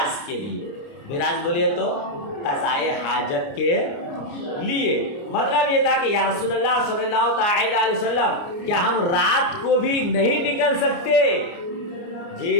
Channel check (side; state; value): right; late; 29 ms